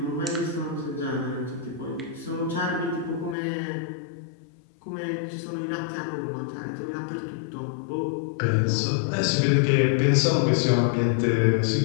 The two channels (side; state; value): right; drops out; at 3.4 s